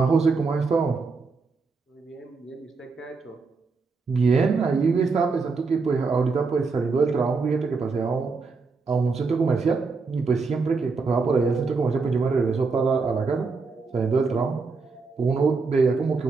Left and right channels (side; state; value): left; quieter; 4.4 dB